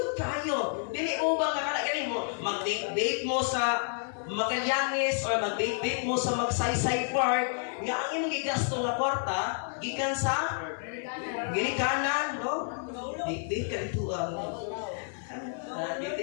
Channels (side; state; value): right; silent; 58 dB below the other